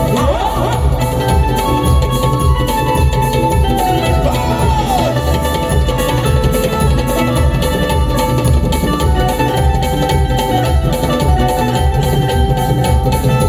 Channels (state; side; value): identical; both; correlation 1.00